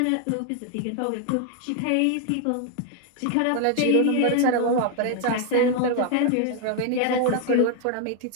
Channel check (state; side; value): different; both; correlation 0.00